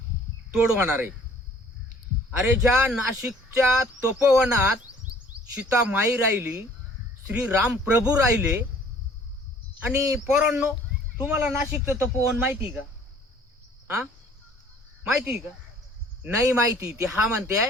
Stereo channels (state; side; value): normal; both; correlation 0.55